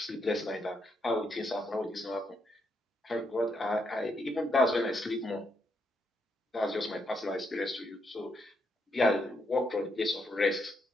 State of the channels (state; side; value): normal; both; correlation 0.78